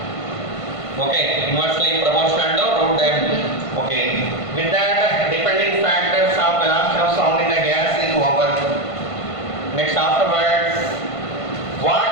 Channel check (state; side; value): late; right; 1.5 ms